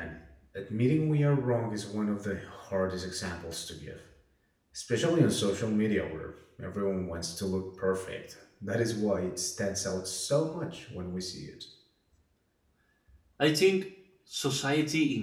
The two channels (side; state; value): both; identical; correlation 1.00